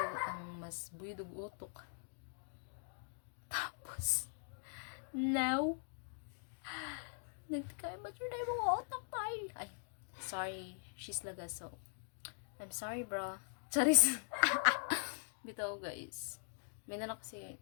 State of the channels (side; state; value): right; silent; digital silence